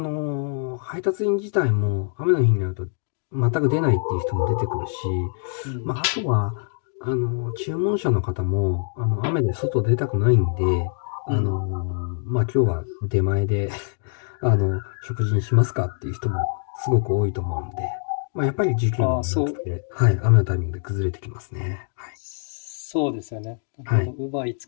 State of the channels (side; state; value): right; silent; digital silence